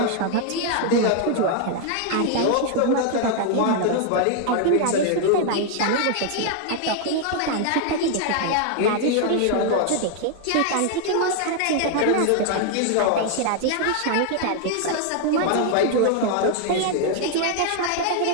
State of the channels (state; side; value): different; both; correlation 0.00